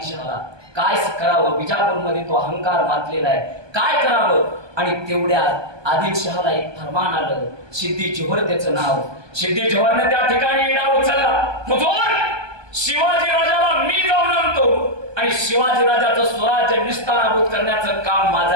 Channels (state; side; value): late; left; 1.2 ms